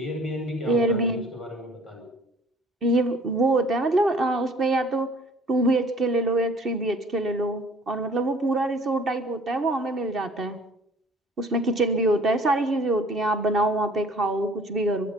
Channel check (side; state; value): both; normal; correlation 0.53